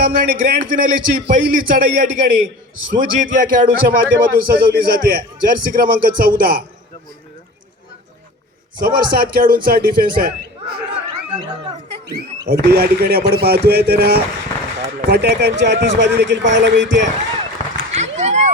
आणि ग्रँड फिनालेची पहिली चढाई या ठिकाणी सुजित या खेळाडूच्या माध्यमातून सजवली जाते. जर्सी क्रमांक 14 समोर 7 खेळाडूंचा डिफेन्स आहे. अगदी या ठिकाणी आपण पाहतोय तर फटाक्यांची आतिषबाजी देखील पाहायला मिळते.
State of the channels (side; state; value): both; normal; correlation 0.36